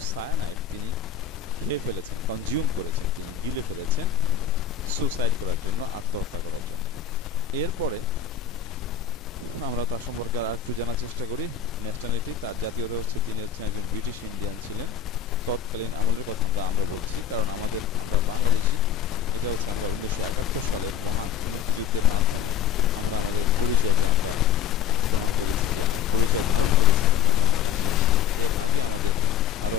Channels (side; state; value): right; quieter; 8.6 dB